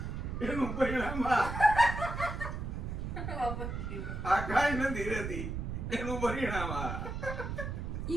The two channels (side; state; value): right; noise; rumble, 4 dB below the sound